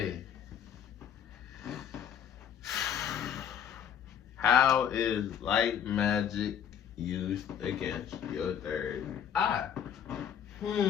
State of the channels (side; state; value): right; quieter; 8.8 dB